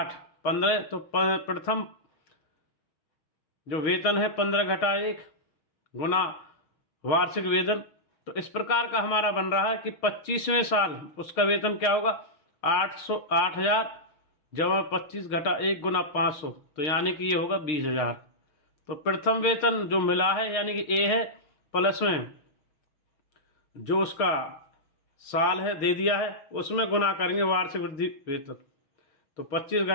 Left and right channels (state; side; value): late; right; 6.5 ms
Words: 15, तो प्रथम जो वेतन है 15 घटा 1 गुना वार्षिक वेतन। तो इस प्रकार का हमारा बन रहा है कि 25वें साल उसका वेतन क्या होगा, 8,000 जमा 25 घटा 1 गुना 500, तो यानी कि ये होगा 20,000। तो प्रथम वेतन जो मिला है यानी कि ए है, प्लस में जो उसका साल है दे दिया है, उसमें गुना करेंगे वार्षिक वृद्धि वेतन। तो 25